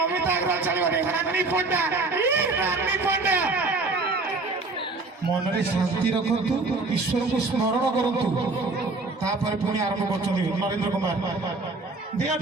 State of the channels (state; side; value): quieter; left; 3.5 dB